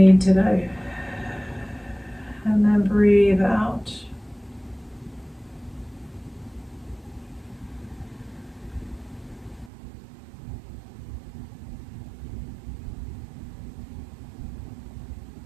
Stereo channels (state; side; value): drops out; left; at 9.7 s